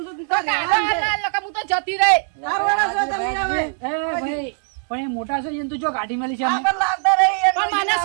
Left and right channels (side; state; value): left; silent; 59 dB below the other